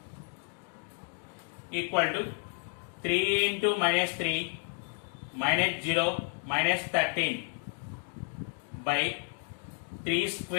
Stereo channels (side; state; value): right; quieter; 37.7 dB